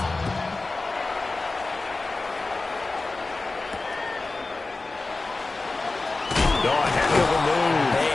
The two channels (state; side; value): quieter; right; 3.4 dB